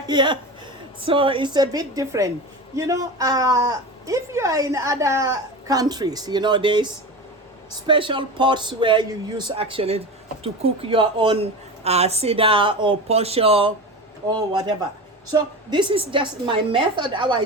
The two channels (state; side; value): normal; both; correlation 0.27